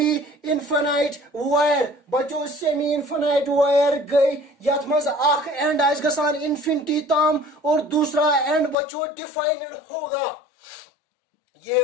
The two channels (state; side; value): drops out; right; at 8.8 s